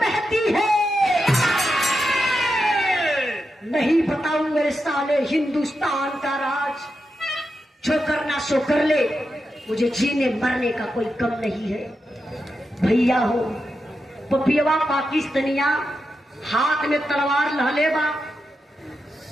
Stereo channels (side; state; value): both; normal; correlation 0.87